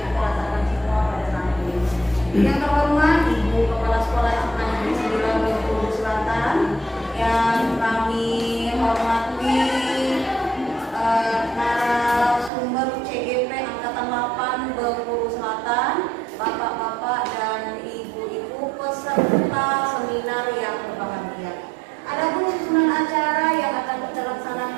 kita rasakan semua pada saat ini. Yang terhormat Ibu Kepala Sekolah SMA Negeri 9 Bengkulu Selatan, yang kami hormati narasumber CGP Angkatan 8 Bengkulu Selatan, Bapak-bapak dan Ibu-ibu peserta seminar yang berbahagia. Adapun susunan acara yang akan kita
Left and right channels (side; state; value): left; drops out; at 12.5 s